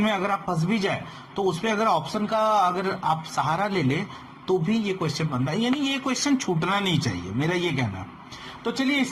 अगर आप फंस भी जाए तो उसमें अगर ऑप्शन का अगर आप सहारा ले ले तो भी ये क्वेश्चन बनता है, यानी ये क्वेश्चन छूटना नहीं चाहिए, मेरा ये कहना। तो चलिए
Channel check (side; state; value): both; identical; correlation 1.00